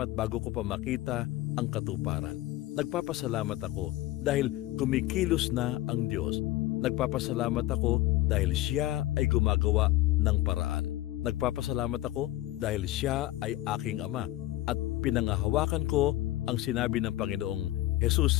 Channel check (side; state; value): right; quieter; 16.2 dB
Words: bago ko pa makita ang katuparan. Nagpapasalamat ako dahil kumikilos na ang Diyos. Nagpapasalamat ako dahil Siya ay gumagawa ng paraan. Nagpapasalamat ako dahil Siya ay aking Ama at pinangahawakan ko ang sinabi ng Panginoong